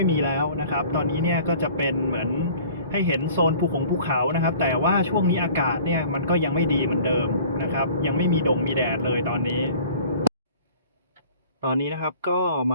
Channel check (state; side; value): inverted; both; correlation -0.48